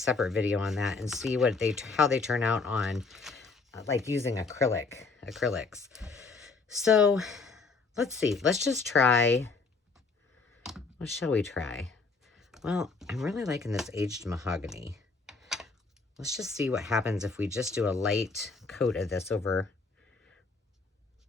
video on that and see how they turn out on like using acrylics. So let's see. Let's just try. What shall we try? Well, I'm really liking this aged mahogany. Let's just see what happens if we just do a light coat of this over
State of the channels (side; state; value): right; quieter; 4.2 dB